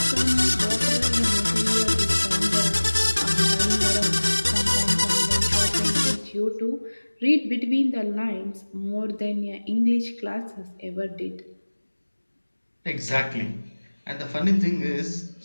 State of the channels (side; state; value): both; inverted; correlation -1.00